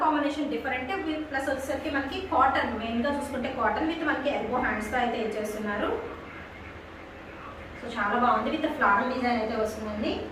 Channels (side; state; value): both; identical; correlation 1.00